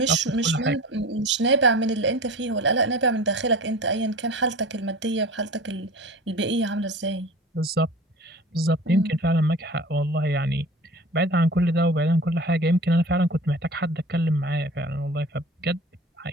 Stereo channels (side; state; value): both; normal; correlation 0.38